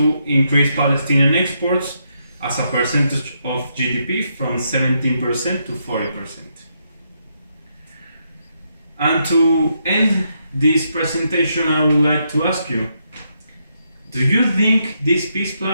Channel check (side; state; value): both; inverted; correlation -0.79